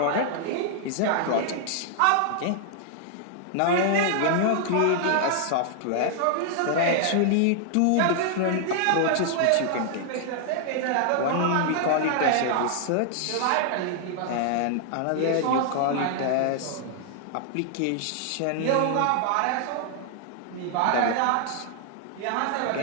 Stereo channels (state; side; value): different; both; correlation 0.00